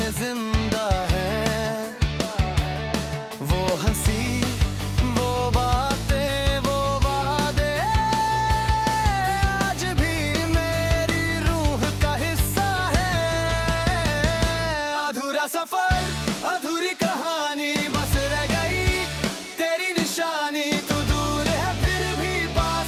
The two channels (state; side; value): identical; both; correlation 1.00